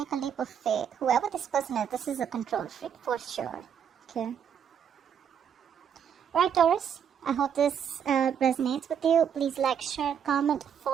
a leap of faith. Whoever this person is, this is a control freak for sure. Okay. Right, Taurus. I hope this resonates with you. Please like, share, comment,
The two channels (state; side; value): quieter; left; 8.1 dB